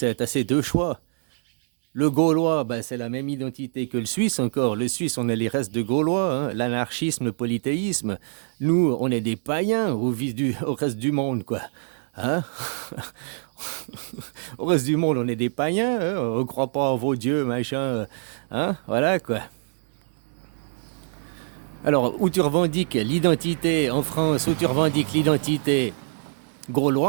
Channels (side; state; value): left; silent; 62 dB below the other